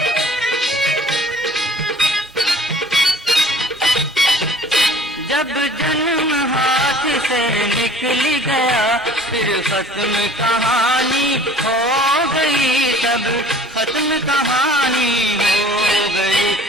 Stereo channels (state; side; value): normal; both; correlation 0.49